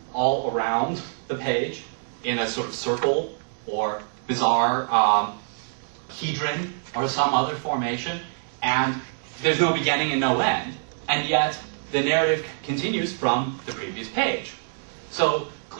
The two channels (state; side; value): silent; left; digital silence